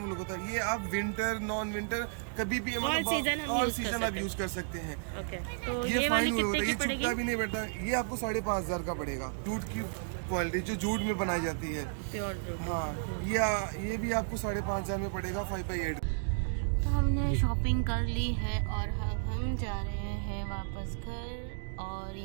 वूल होता है। ये आप विंटर, नॉन विंटर कभी भी ऑल सीजन आप यूज कर सकते हैं। ओके, तो ये वाली कितने की पड़ेगी? ये भी नहीं बैठता। ये आपको 5500 का पड़ेगा। जूट की क्वालिटी जो जूट में बनाई जाती है, प्योर जूट। हाँ, ये भी आपको 5500 में पड़ेगा 5x8। तो हमने शॉपिंग कर ली है और अब हम जा रहे हैं वापस घर, और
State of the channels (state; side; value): silent; left; digital silence